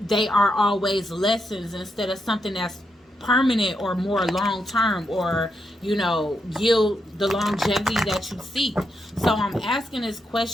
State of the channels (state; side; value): normal; both; correlation 0.82